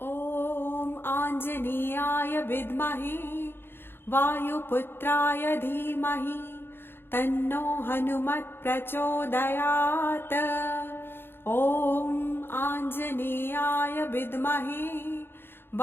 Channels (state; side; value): late; right; 0.10 ms